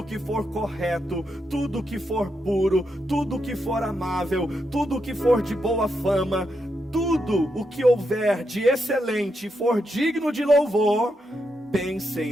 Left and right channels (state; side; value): normal; both; correlation 0.83